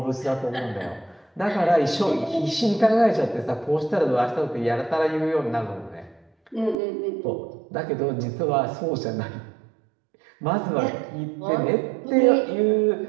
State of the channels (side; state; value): left; drops out; at 6.8 s